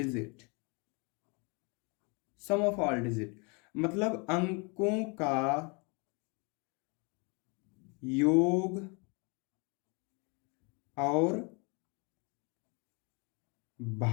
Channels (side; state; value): right; quieter; 32.4 dB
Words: Sum of all digit मतलब अंकों का योग और